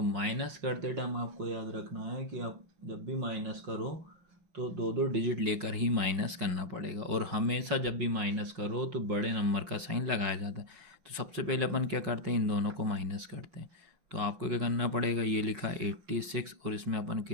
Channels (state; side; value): late; left; 5.8 ms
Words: माइनस करते टाइम आपको याद रखना है कि आप जब भी माइनस करो तो 2 डिजिट लेकर ही माइनस करना पड़ेगा, और हमेशा जब भी माइनस करो तो बड़े नंबर का साइन लगाया जाता है। तो सबसे पहले अपन क्या करते हैं, इन दोनों को माइनस करते हैं। तो आपको क्या करना पड़ेगा, ये लिखा 86 और इसमें अपन